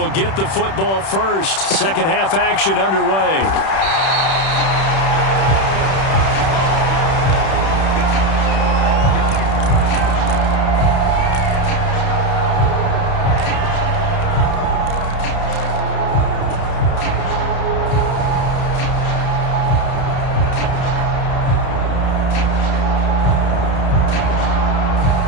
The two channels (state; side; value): late; right; 31 ms